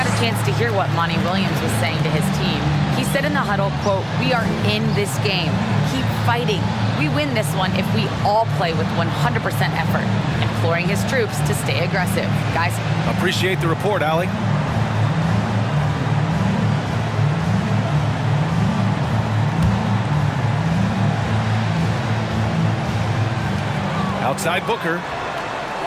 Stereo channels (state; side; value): identical; both; correlation 1.00